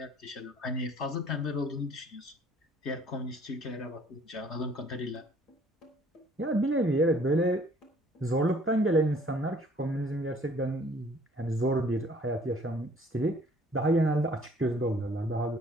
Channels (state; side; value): normal; both; correlation 0.57